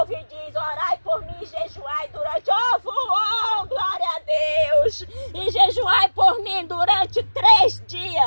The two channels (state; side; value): inverted; both; correlation -1.00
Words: e diz: orai por mim e jejuai durante... Oh, glória a Deus! E jejuai por mim durante 3